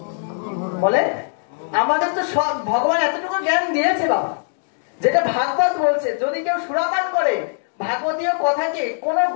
বলে আমাদের তো সব ভগবান এতটুকু জ্ঞান দিয়েছে বাবা, যেটা ভাগবত বলছে, যদি কেউ সুরাপান করে ভাগবতীয় কথাকে কোন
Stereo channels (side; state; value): right; silent; digital silence